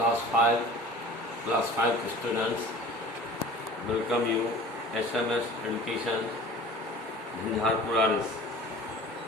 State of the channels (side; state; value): both; normal; correlation 0.42